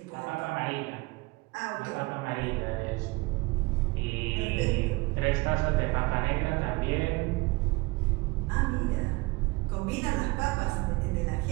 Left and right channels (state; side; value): quieter; left; 24.2 dB